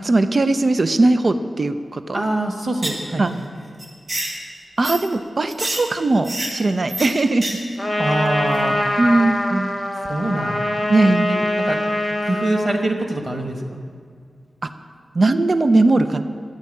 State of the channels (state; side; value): normal; both; correlation 0.95